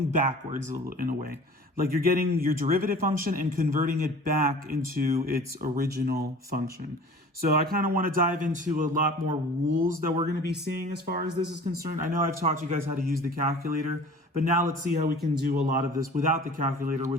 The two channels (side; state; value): both; normal; correlation 0.43